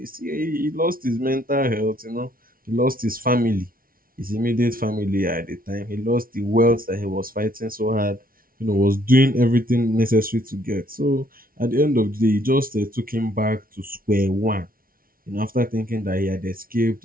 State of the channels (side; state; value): left; late; 0.42 ms